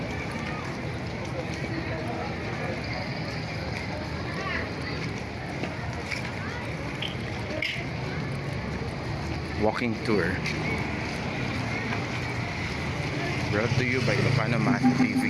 Walking tour. Brought to you by Ilocano Math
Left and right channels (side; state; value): both; identical; correlation 1.00